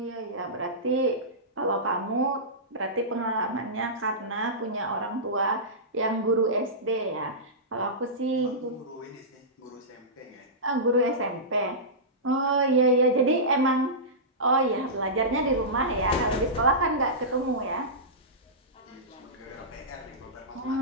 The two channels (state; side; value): normal; both; correlation -0.16